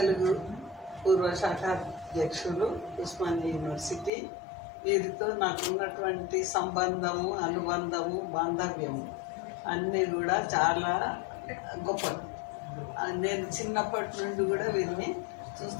పూర్వ శాఖ అధ్యక్షులు, ఉస్మానియా యూనివర్సిటీ. వీరితో నాకు ఉన్నటువంటి సంబంధము, అనుబంధము, బాంధవ్యము అన్నీ కూడా చాలా గొప్పది. నేను చిన్నప్పటి నుండి కూడా వీరిని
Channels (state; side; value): drops out; right; at 4.1 s